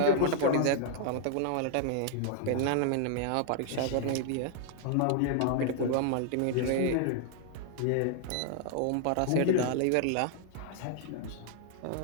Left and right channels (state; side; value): different; both; correlation 0.00